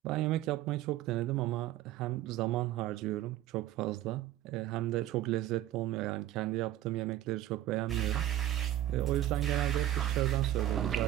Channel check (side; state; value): left; quieter; 13.5 dB